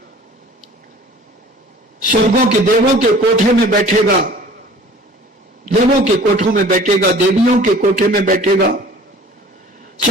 स्वर्गों के देवों के कोठे में बैठेगा, देवों के कोठों में बैठेगा, देवियों के कोठे में बैठेगा।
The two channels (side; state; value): both; normal; correlation 0.47